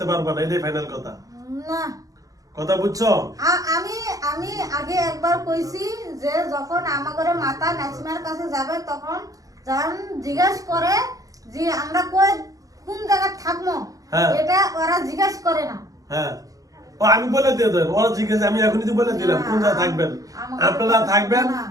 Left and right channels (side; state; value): left; late; 0.17 ms